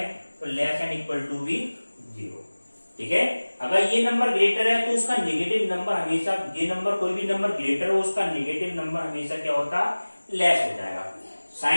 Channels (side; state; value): both; inverted; correlation -1.00